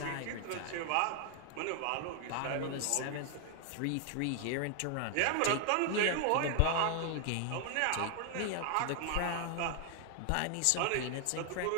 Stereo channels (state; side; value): different; both; correlation 0.00